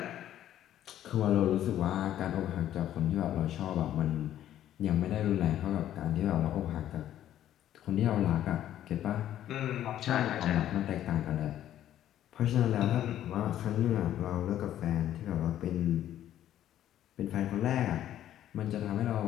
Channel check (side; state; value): right; quieter; 11.8 dB